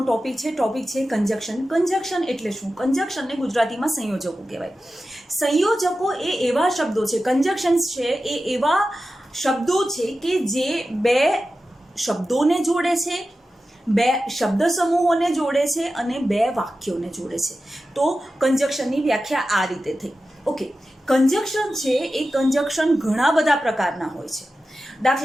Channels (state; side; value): normal; both; correlation 0.93